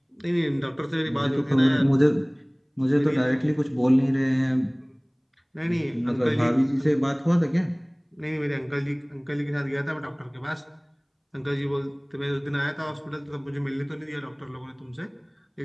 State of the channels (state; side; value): identical; both; correlation 1.00